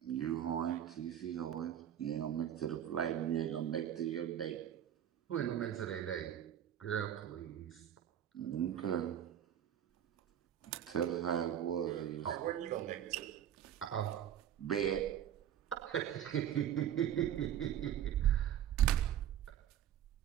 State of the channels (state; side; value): quieter; left; 10.4 dB